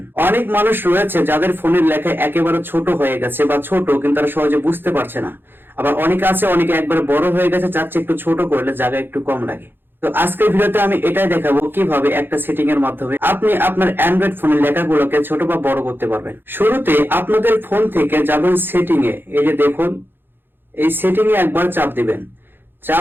অনেক মানুষ রয়েছে যাদের ফোনের লেখা একেবারে ছোট হয়ে গেছে বা ছোট কিন্তু তারা সহজে বুঝতে পারছে না। আবার অনেকে আছে অনেকে একবারে বড় হয়ে গেছে, চাচ্ছে একটু ছোট করলে জায়গা একটু কম লাগে। তো আজকের ভিডিওতে আমি এটাই দেখাবো কিভাবে একটা সেটিং এর মাধ্যমে আপনি আপনার অ্যান্ড্রয়েড ফোনের লেখাগুলোকে ছোট বা বড় করতে পারবেন। শুরুতে আপনাদের ফোন থেকে যাবেন সেটিং এ, এই যে দেখুন এই সেটিং এ একবার চাপ দিবেন।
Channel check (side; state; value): left; late; 0.10 ms